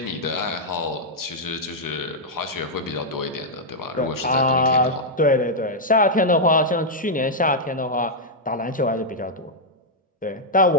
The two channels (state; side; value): normal; both; correlation -0.04